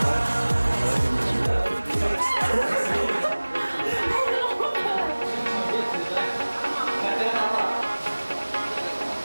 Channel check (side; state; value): both; inverted; correlation -1.00